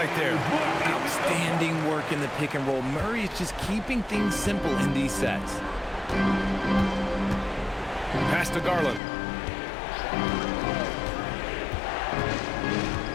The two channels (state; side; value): drops out; right; at 9.0 s